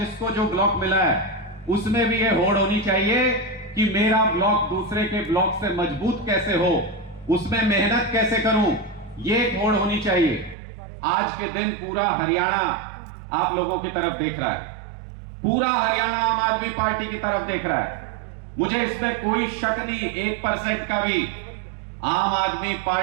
जो ब्लॉक मिला है उसमें भी ये होड़ होनी चाहिए कि मेरा ब्लॉक दूसरे के ब्लॉक से मजबूत कैसे हो, उसमें मेहनत कैसे करूं, ये एक होड़ होनी चाहिए। आज के दिन पूरा हरियाणा आप लोगों की तरफ देख रहा है, पूरा हरियाणा आम आदमी पार्टी की तरफ देख रहा है। मुझे इसमें कोई शक नहीं, 1% का भी। आम आदमी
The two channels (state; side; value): drops out; left; at 10.6 s